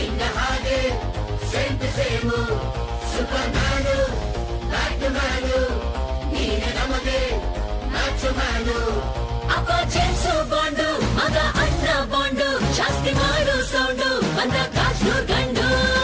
Hage, same to same. Supermanu, Batmanu, Neene namage, Macho Manu. Appa James Bondu, Maga Anna Bondu, Jasti Maru Soundu, Banda Kashnu Gandu.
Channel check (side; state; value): both; identical; correlation 1.00